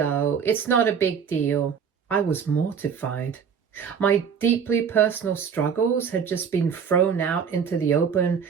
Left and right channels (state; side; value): quieter; left; 6.9 dB